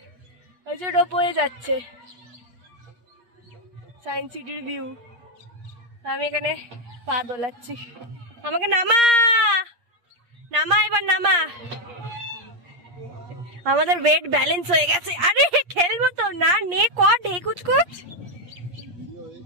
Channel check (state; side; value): late; left; 8.6 ms